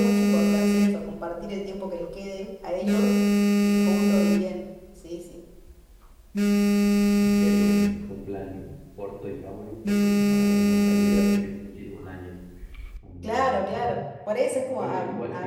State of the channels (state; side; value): identical; both; correlation 1.00